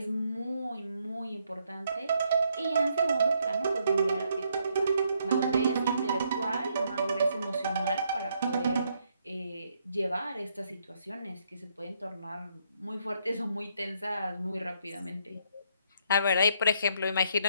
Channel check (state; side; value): inverted; both; correlation -0.73